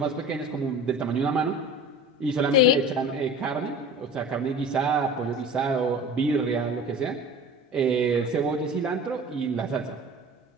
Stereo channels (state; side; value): normal; both; correlation 0.38